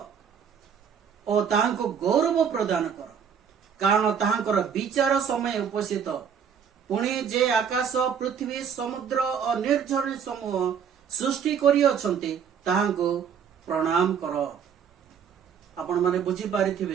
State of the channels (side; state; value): left; quieter; 7.4 dB